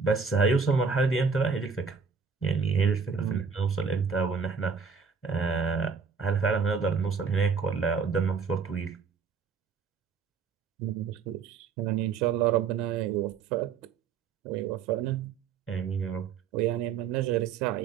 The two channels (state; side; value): quieter; left; 5.7 dB